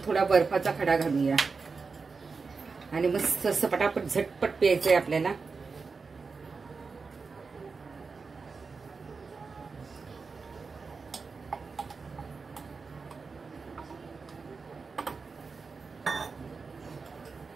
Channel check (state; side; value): quieter; left; 4.6 dB